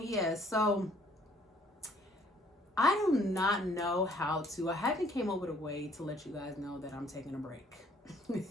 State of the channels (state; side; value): normal; both; correlation 0.61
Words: So I do not know how to. I haven't came up with a way to let you guys know that I'm taking a break.